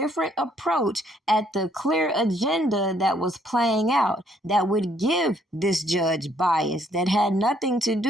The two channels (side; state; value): both; normal; correlation 0.67